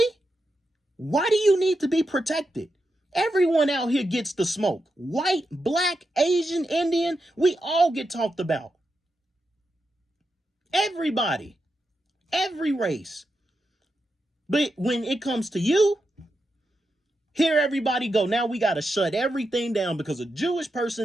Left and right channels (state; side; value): normal; both; correlation 0.87